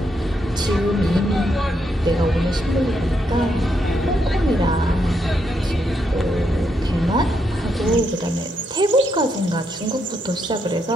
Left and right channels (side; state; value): both; normal; correlation 0.79